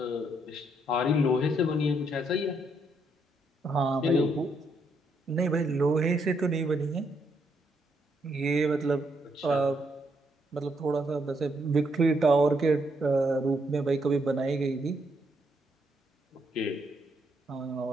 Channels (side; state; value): both; normal; correlation 0.75